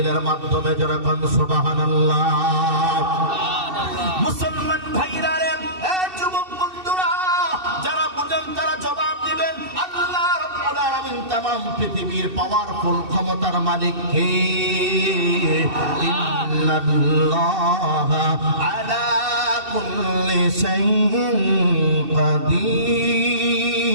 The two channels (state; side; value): late; left; 2.7 ms